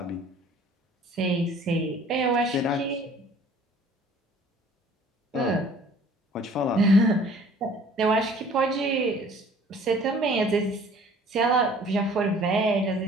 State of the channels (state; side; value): normal; both; correlation 0.52